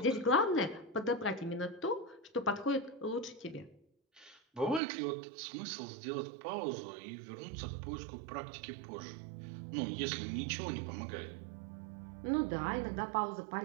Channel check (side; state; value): left; drops out; at 4.8 s